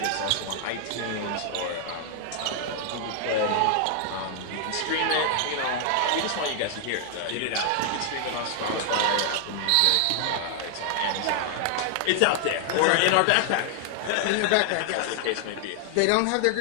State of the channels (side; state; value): both; different; correlation 0.00